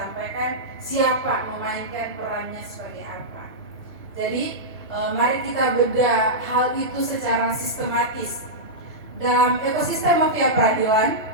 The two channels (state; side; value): normal; both; correlation -0.11